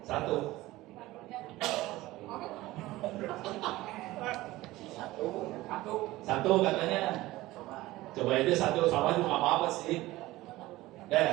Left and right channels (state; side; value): quieter; left; 17.9 dB